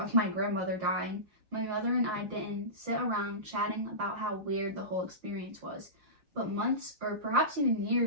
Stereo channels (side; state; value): left; late; 5.7 ms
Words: my grandmother dying, my mother and I didn't sit around chatting about how weird the whole experience was. But months, or perhaps even